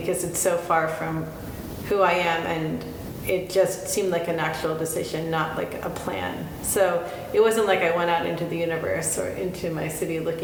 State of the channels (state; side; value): identical; both; correlation 1.00